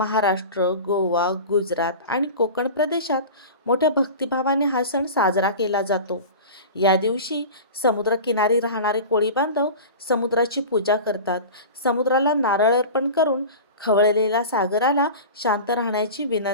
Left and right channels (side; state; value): both; inverted; correlation -0.33